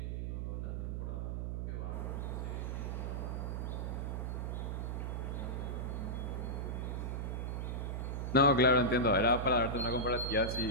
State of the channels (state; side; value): noise; right; hum, 2 dB below the sound